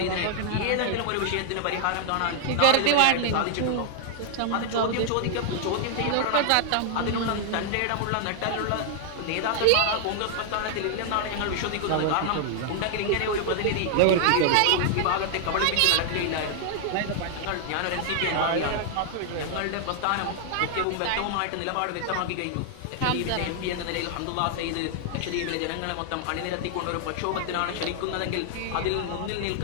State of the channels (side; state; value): both; different; correlation 0.00